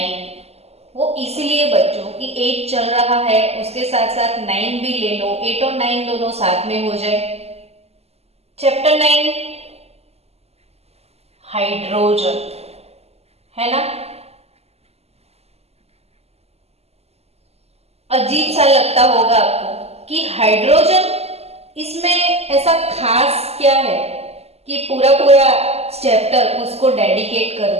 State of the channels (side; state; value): left; late; 0.30 ms